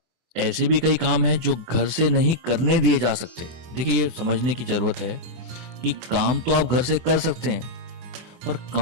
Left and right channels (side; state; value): left; late; 24 ms